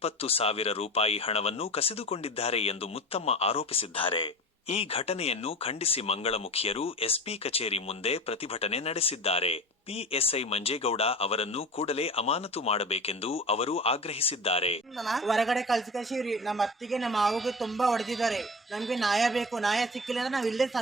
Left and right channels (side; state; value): both; normal; correlation 0.34